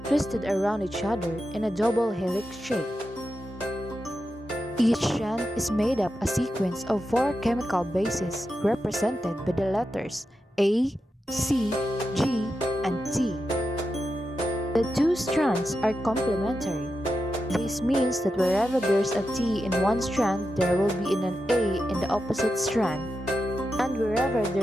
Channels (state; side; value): normal; both; correlation 0.89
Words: twisted around each other in a double helix shape. Each strand is made up a sequence of four chemical bases represented by the letters A, C, G, and T. The two strands are complementary. This means that wherever there's a T in one strand, there will be an A in the opposite strand. And wherever